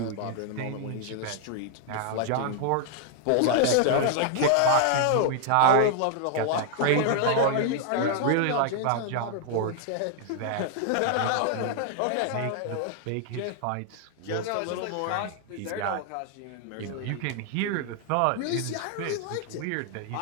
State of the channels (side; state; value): both; different; correlation 0.00